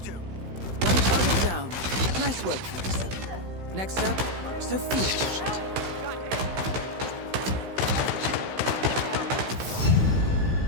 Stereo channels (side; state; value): left; late; 16 ms